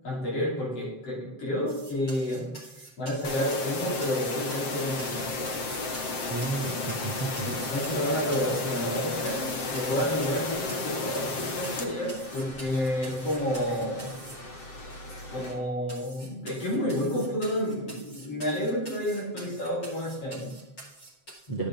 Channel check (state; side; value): late; right; 7.6 ms